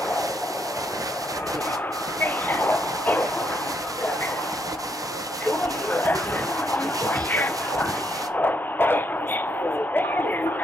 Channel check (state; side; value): normal; both; correlation 0.75